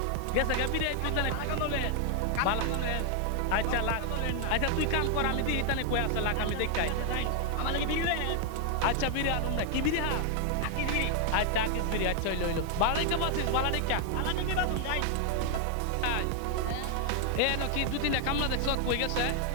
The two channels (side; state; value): both; different; correlation 0.00